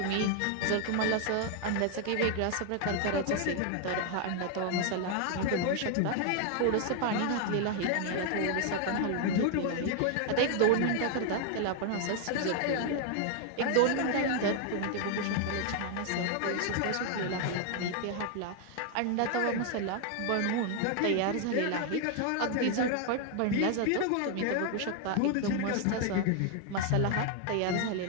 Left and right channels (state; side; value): different; both; correlation 0.00